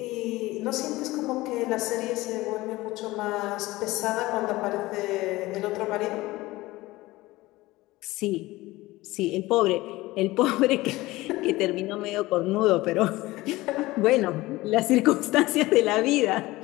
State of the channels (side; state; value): right; quieter; 19.1 dB